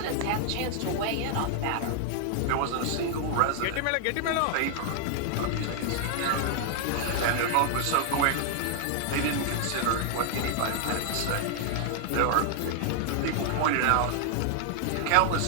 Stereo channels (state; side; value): different; both; correlation 0.00